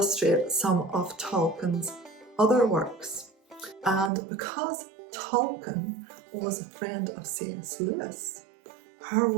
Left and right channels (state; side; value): drops out; left; at 4.1 s